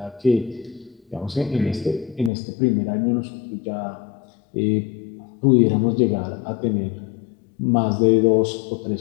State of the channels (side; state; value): right; drops out; at 2.3 s